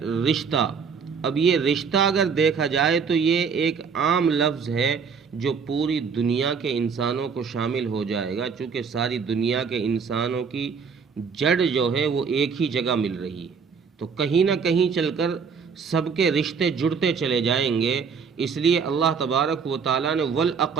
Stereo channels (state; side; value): quieter; left; 5.9 dB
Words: رشتہ، اب یہ رشتہ اگر دیکھا جائے تو یہ ایک عام لفظ ہے جو پوری دنیا کے انسانوں کو شامل ہو جائے گا، چونکہ ساری دنیا کے انسانوں کی جڑ جو ہے وہ ایک ہی جگہ مل رہی ہے، تو کہیں نہ کہیں چل کر سب کے رشتے جڑتے چلے جائیں گے۔ اس لیے اللہ تبارک و تعالیٰ نے